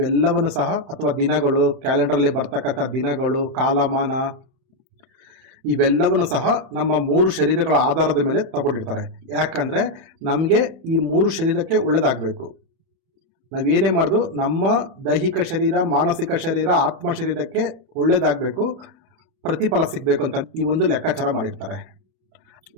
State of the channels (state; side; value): late; left; 31 ms